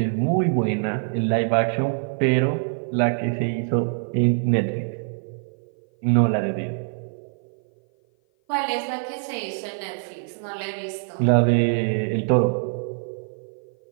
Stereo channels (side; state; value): left; silent; 56 dB below the other